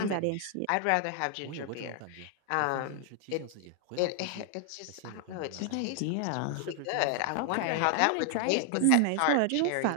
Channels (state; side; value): different; both; correlation 0.00